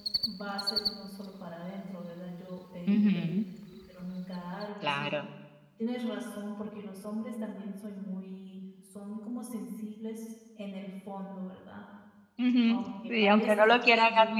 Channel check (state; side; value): identical; both; correlation 1.00